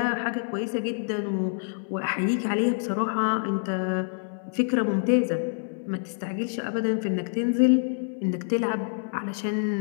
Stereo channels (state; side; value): silent; right; 60 dB below the other